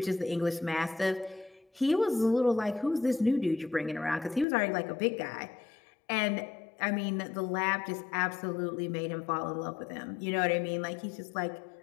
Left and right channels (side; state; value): right; drops out; at 4.5 s